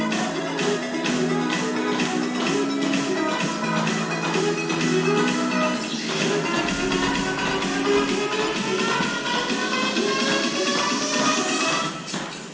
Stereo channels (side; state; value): both; identical; correlation 1.00